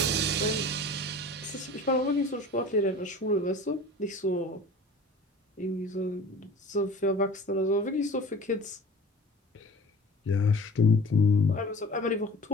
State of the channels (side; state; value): both; normal; correlation 0.42